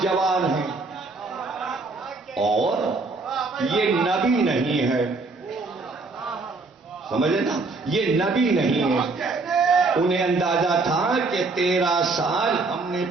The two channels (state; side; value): quieter; left; 3.7 dB